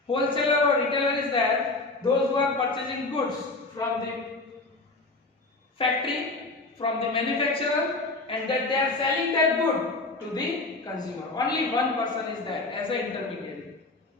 wholesaler or retailer is there those who are purchasing goods from the factory, from the manufacturer, and that they are selling that good to the consumer. Only one person is there as an intermediary.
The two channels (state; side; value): quieter; right; 3.3 dB